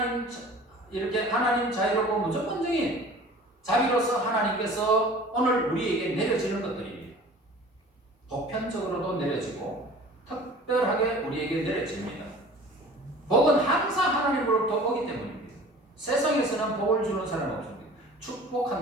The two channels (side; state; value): both; normal; correlation 0.44